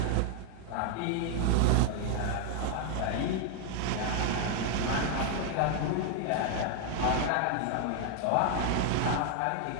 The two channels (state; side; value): different; both; correlation 0.00